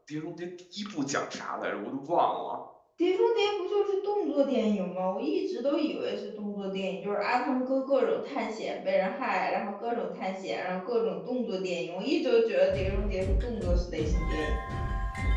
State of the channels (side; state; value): both; identical; correlation 1.00